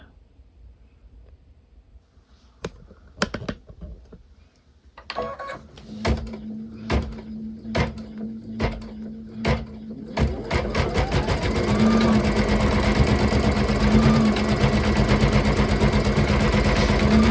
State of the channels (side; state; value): both; identical; correlation 1.00